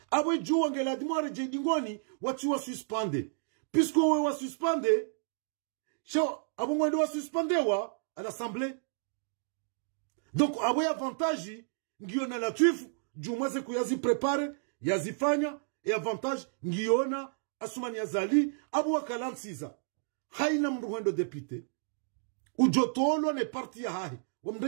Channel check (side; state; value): left; silent; digital silence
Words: abwe jua ngela dimo wareje dingoni watu wa suspende puisque we wa suspende sho abungwa ndo wa suspendewa à l'assemblée donc abwe avantage ngiona Latif jumwaze kuyazi prepare yazifanya e avantage ngiona Asuma Nazali abu wakalansiza haina mruhendo député ujotolo ne parti ya hahi